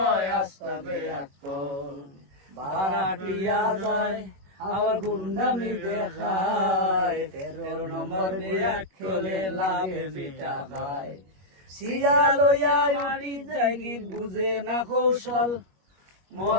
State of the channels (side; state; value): left; late; 21 ms